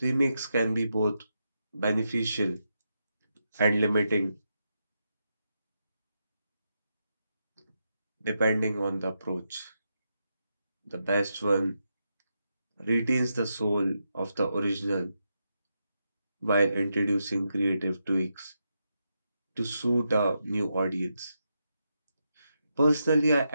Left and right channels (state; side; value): inverted; both; correlation -0.84